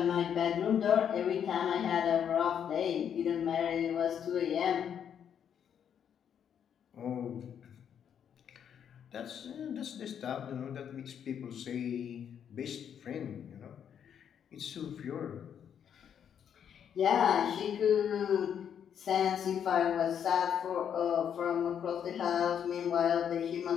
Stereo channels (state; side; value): quieter; right; 8.5 dB